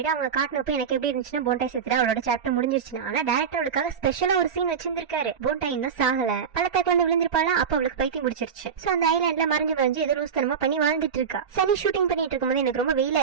அவங்க காட்டினப்ப எனக்கு எப்படி இருந்துச்சுன்னா போண்டாய் செத்துட்டு அவளோட சாப்டர் முடிஞ்சிருச்சுன்னா, ஆனா டேரக்டர் அவளுக்காக ஸ்பெஷலா ஒரு சீன் வச்சிருந்திருக்காரு. போண்டாய் இன்னும் சாகல, பள்ளத்தாக்குல வந்து விழுந்திருப்பாளா, அப்ப அவளுக்கு பைத்தியம் முடிச்சிருச்சு. சோ அந்த ஐலாண்ட்ல மறைஞ்சு ஏதோ லூஸ்தனமா பண்ணி வாழ்ந்துட்டு இருக்கா. சனி ஷூட்டிங் பண்ணிட்டு இருக்கும்போது எனக்கு ரொம்ப வெயிலா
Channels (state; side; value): quieter; left; 6.9 dB